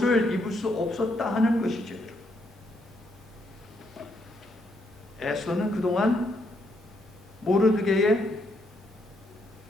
입을 수 없었다 하는 것이죠. 에스더는 그동안 모르드게의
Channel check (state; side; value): normal; both; correlation 0.75